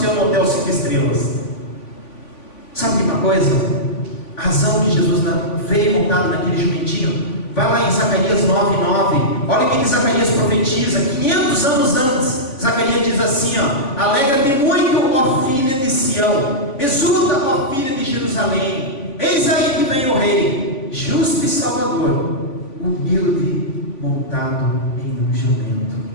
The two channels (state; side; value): late; right; 3.5 ms